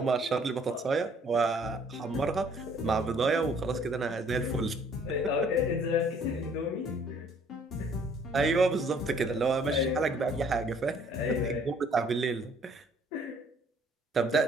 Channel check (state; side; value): normal; both; correlation 0.60